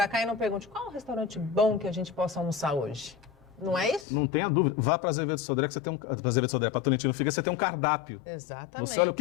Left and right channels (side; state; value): right; drops out; at 4.0 s